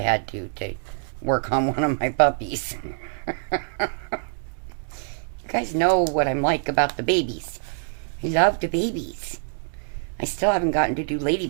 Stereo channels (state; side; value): silent; left; digital silence